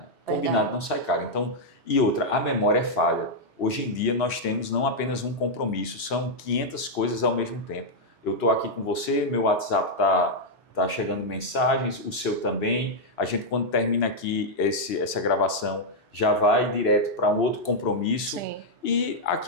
Combinado não sai caro. Então, e outra, a memória é falha. Hoje em dia nós temos não apenas um compromisso, são 500 coisas ao mesmo tempo. Eu estou aqui com você, meu WhatsApp está chegando mensagens, o seu também. A gente, quando termina aqui essa gravação, já vai direto para um outro compromisso. Sim. E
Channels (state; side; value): normal; both; correlation -0.03